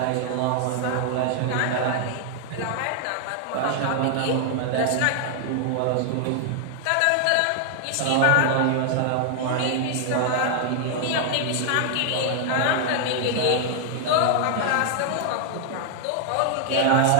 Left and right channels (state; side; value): different; both; correlation 0.00